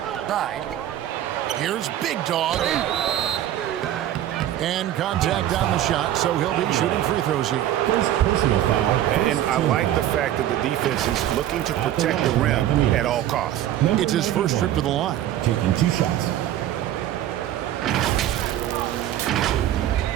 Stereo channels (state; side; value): quieter; left; 12.2 dB